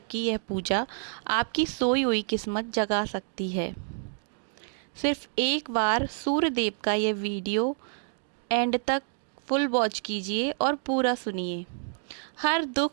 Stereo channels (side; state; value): left; silent; 59 dB below the other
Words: की यह पूजा आपकी सोई हुई किस्मत जगा सकती है। सिर्फ एक बार सूर्य देव का यह वीडियो एंड तक फुल वॉच कीजिए और पूरा सुनिए। हर